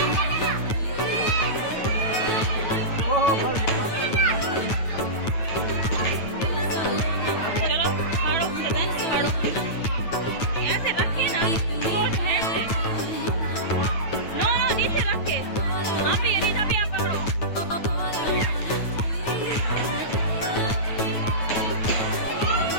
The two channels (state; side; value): late; right; 9.2 ms